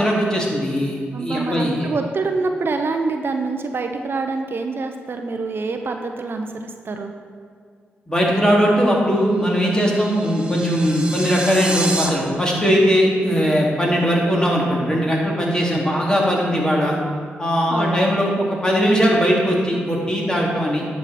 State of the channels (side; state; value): both; normal; correlation 0.81